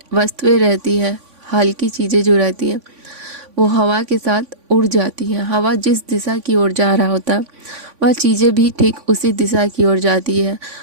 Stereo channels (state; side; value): late; left; 3.5 ms